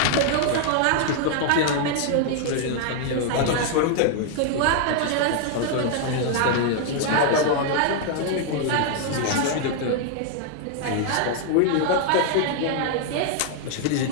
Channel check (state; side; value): different; both; correlation 0.00